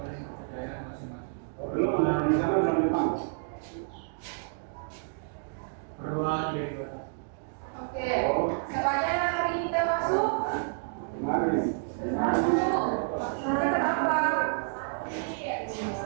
dan kepercayaan masing-masing. Berdoa dari doa. Oke. Siapanya yang hari ini kita masuk? Masuk. Kenapa?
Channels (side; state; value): left; silent; digital silence